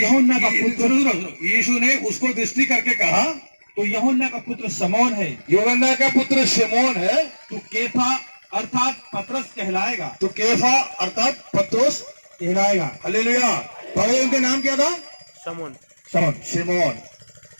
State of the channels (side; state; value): both; inverted; correlation -1.00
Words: का पुत्र। यीशु ने उसको दृष्टि करके कहा, तो यूहन्ना का पुत्र शमौन है, यूहन्ना का पुत्र शिमोन है, तू केफा अर्थात पतरस कहलाएगा। तो केफा अर्थात पत्रोस कहलाएगा। हालेलुया। पहले उनका नाम क्या था? शमौन। शमौन, शिमोन।